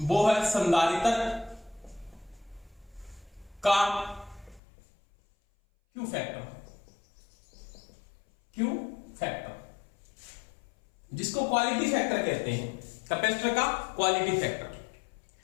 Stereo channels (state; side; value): drops out; right; at 4.6 s